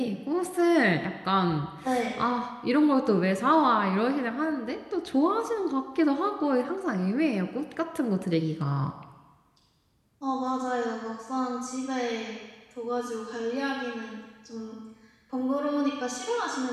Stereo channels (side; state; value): both; identical; correlation 1.00